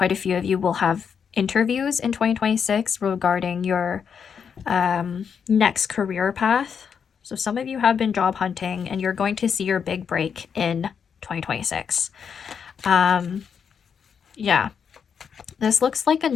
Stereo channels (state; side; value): quieter; right; 6.9 dB